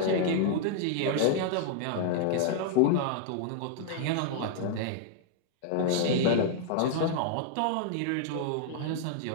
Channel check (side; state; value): both; different; correlation -0.01